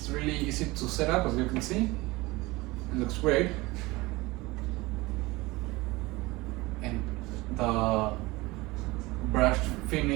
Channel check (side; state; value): left; quieter; 21.6 dB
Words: really easy to set up, as you can see. It looks great. And the brushed